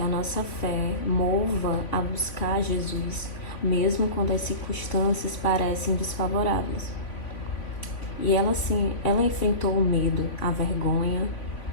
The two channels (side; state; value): right; late; 3.5 ms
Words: a nossa fé mova a buscar Jesus, mesmo quando as circunstâncias parecem desfavoráveis. E ela enfrentou o medo, a vergonha,